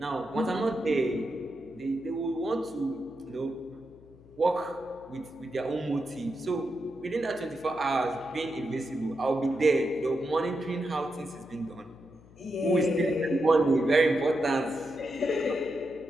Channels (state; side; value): noise; left; hum, 24 dB below the sound